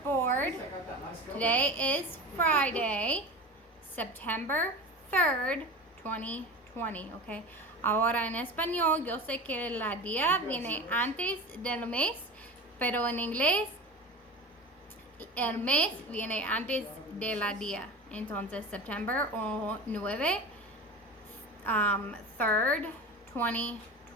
Today is Friday, September 3rd, 2020. Okay. Ahora en español, yo sé que la día viene antes del mes, pero en inglés el mes viene antes de la día. Entonces, September 9, 3rd,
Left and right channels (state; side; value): normal; both; correlation 0.30